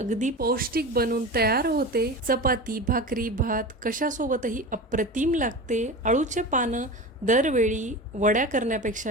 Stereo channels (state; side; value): normal; both; correlation 0.29